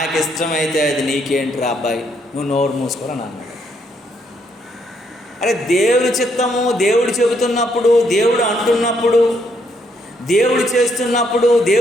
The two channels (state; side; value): normal; both; correlation 0.73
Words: ఇష్టమైతే అది నీకేంటిరా అబ్బాయి, నువ్వు నోరు మూసుకోరని అన్నాడు. అరే, దేవుడి చిత్తము, దేవుడు చెబుతున్నప్పుడు, దేవుడు అంటున్నప్పుడు, దేవుడు చేస్తున్నప్పుడు,